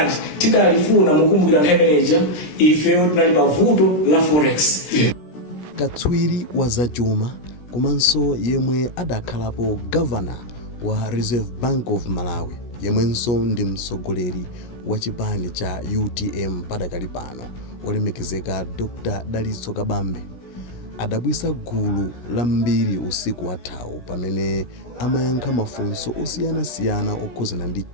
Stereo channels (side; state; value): right; late; 17 ms